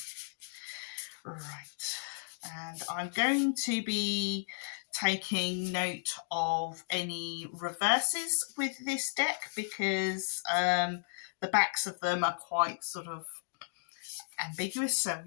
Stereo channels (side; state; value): right; silent; digital silence